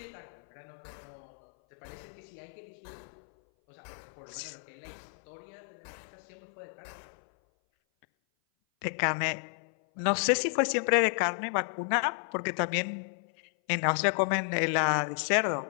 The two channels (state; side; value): silent; right; 56 dB below the other